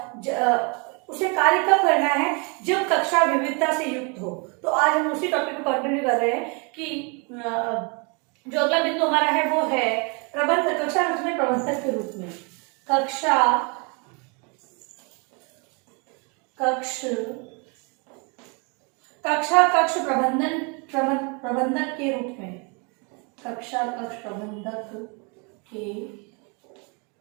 उसे कार्य कब करना है जब कक्षा विविधता से युक्त हो। तो आज हम उसी टॉपिक को कंटिन्यू कर रहे हैं कि जो अगला बिंदु हमारा है वो है प्रबंध कक्षा में प्रबंधक के रूप में कक्ष प्रबंधक के रूप में कक्षा कक्ष प्रबंधक के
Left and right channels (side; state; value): left; quieter; 33.2 dB